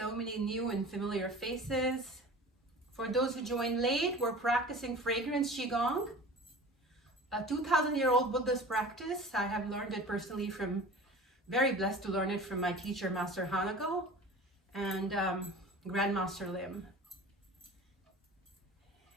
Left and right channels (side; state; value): both; normal; correlation 0.39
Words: many new and familiar faces. For those who joined late, we're practicing fragrance Qigong, a 2,000-year-old Buddhist practice. I have learned it personally very blessed to learn it from my teacher, Master Hanako, and Grandmaster Lim.